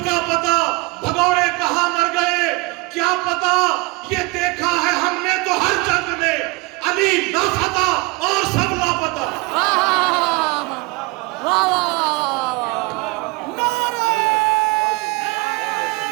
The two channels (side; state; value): left; quieter; 25.5 dB